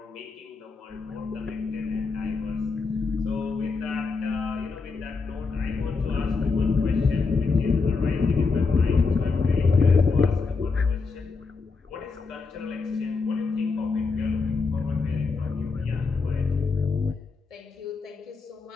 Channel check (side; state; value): right; quieter; 4.5 dB